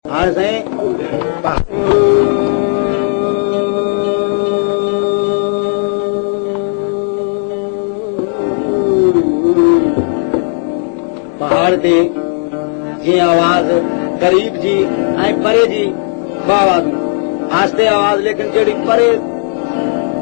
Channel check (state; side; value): silent; right; 63 dB below the other